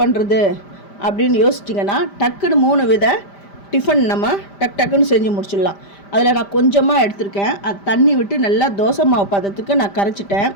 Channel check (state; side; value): late; right; 5.0 ms